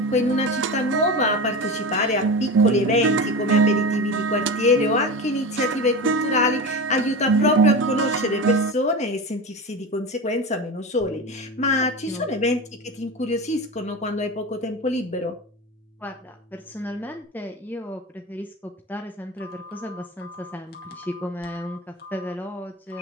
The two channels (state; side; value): normal; both; correlation 0.25